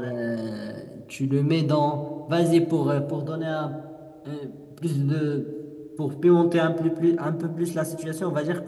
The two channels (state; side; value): identical; both; correlation 1.00